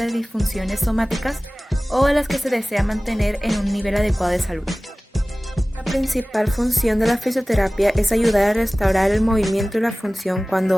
disfunciones somáticas o a las que se desea mantener en un nivel adecuado de salud. La principal función de la fisioterapia es ayudar a restaurar el movimiento y la función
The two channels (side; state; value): both; normal; correlation 0.98